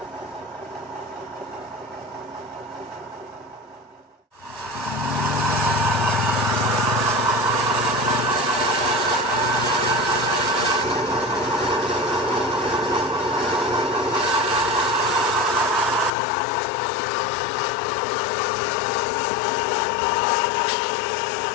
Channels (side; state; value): right; drops out; at 16.1 s